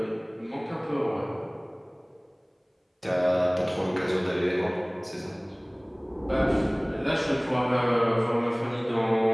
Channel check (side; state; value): both; identical; correlation 1.00